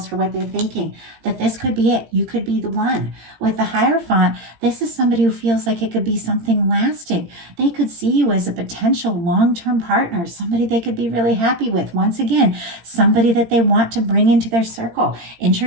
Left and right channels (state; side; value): late; left; 18 ms